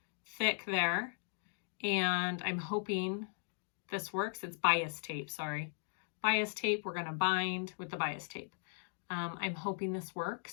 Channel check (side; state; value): right; silent; digital silence